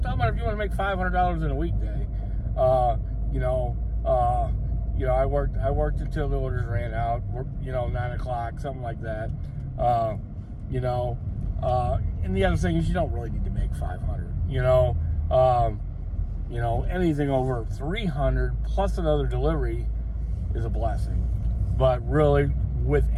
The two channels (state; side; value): identical; both; correlation 1.00